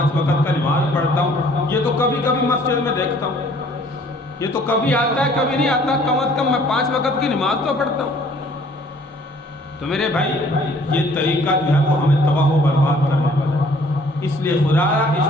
وقت کا نماز پڑھتا ہوں، یہ تو کبھی کبھی مسجد میں دیکھتا ہوں، یہ تو کبھی آتا ہے کبھی نہیں آتا، کم از کم میں 5 وقت کی نماز تو پڑھتا ہوں۔ تو میرے بھائی یہ طریقہ جو ہے وہ ہمیں تباہ و برباد کرنے والا ہے، اس لیے خدا اس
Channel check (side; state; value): both; normal; correlation 0.57